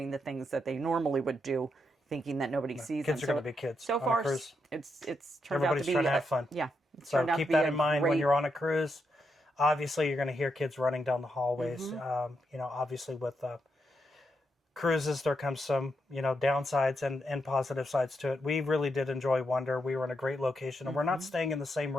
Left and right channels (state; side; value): normal; both; correlation 0.82